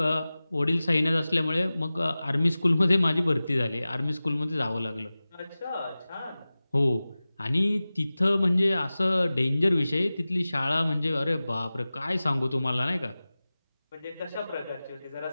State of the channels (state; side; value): inverted; both; correlation -0.97